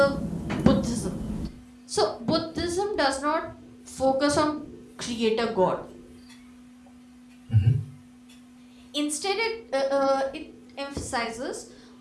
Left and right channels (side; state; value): both; identical; correlation 1.00